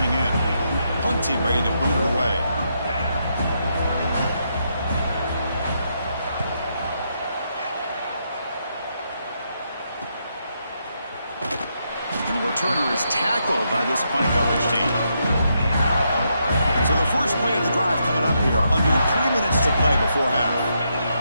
in. Punt team ready to boot it away. returner is tackled by this punt coverage team. So the first play of the drive coming up here, under 3 minutes to play before half.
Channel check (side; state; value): both; inverted; correlation -0.80